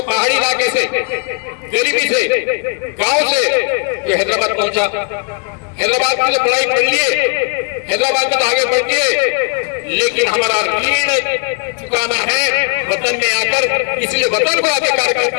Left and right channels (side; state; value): right; quieter; 39.5 dB